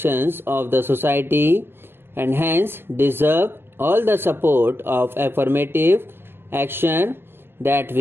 of the society and hence deserve all the support of affirmative action that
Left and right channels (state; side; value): late; left; 0.11 ms